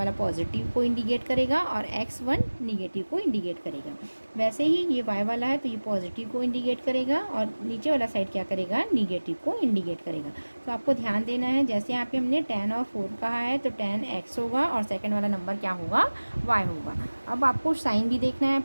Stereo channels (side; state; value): both; inverted; correlation -1.00